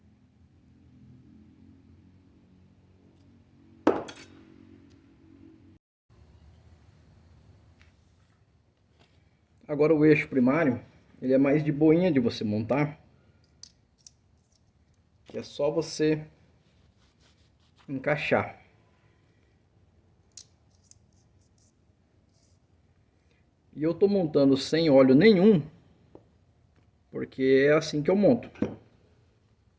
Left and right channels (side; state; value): both; identical; correlation 1.00